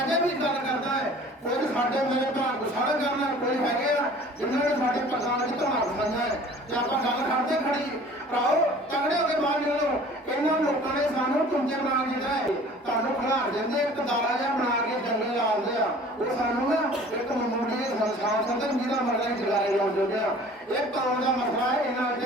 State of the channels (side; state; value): both; normal; correlation 0.48